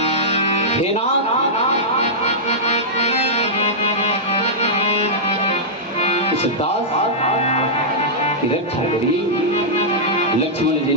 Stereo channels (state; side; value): normal; both; correlation -0.11